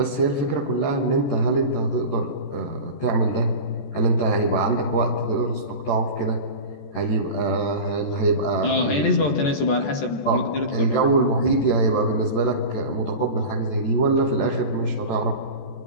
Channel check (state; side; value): late; right; 14 ms